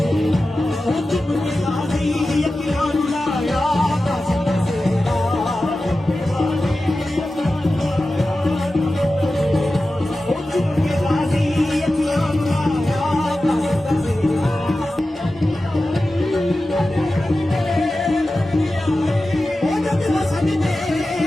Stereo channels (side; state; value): both; normal; correlation 0.94